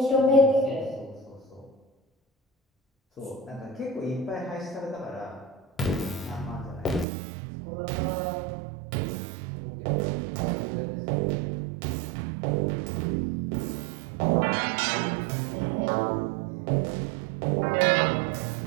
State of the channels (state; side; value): drops out; left; at 7.1 s